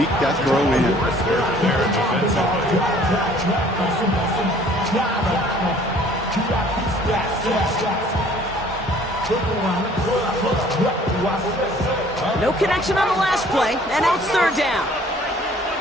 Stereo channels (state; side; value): normal; both; correlation 0.55